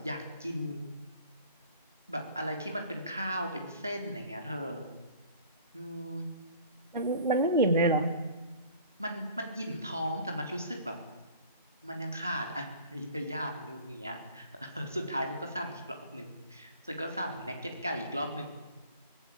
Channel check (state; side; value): inverted; both; correlation -0.47